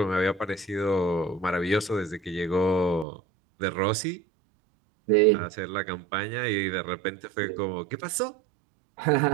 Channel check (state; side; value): drops out; left; at 3.1 s